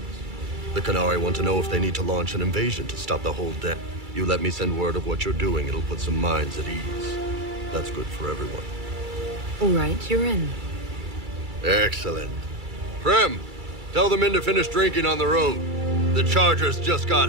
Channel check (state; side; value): late; left; 2.3 ms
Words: The Qunari want to know if they need to launch an invasion to stop the whole den. You let me send word of what you're doing, it'll put some minds at ease. That's good for everyone. All right, you're in. Excellent. Prem, tell the men to finish drinking on the road. The Chargers just